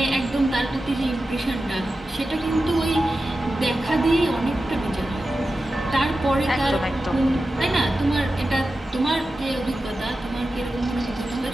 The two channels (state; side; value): normal; both; correlation 0.93